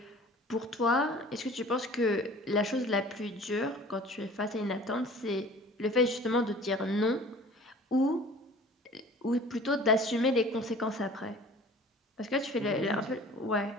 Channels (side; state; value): both; normal; correlation 0.46